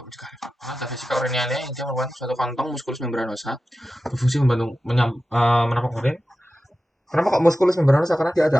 mencegah reflux. Karena ada vesika uriniana yang dia merupakan suatu kantong muskulus membranosa berfungsi membantu menampung urin. Kenapa kok musculus membranosa? Karena dia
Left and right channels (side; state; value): both; normal; correlation 0.93